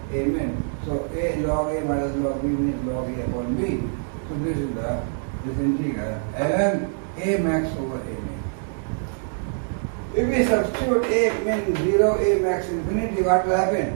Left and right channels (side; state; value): left; silent; digital silence